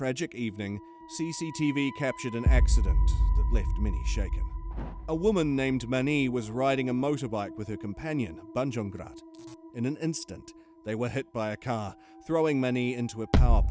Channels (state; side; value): identical; both; correlation 1.00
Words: evening, CCTV captured an accident that left many shaken. A woman named Mani was riding a motorbike with her companion, Banjongrat. In an instant, they were hit by a car, throwing Mani into a power